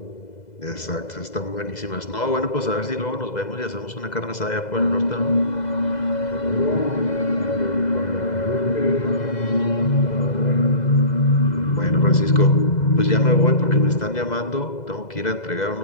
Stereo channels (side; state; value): right; late; 2.0 ms